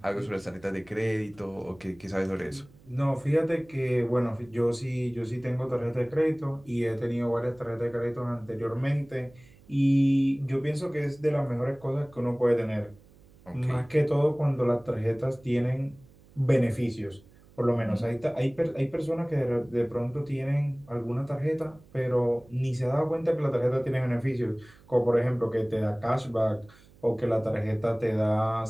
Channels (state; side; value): noise; right; hum, 26 dB below the sound